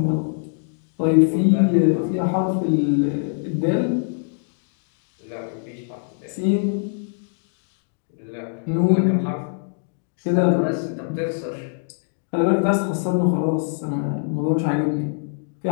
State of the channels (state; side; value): silent; right; digital silence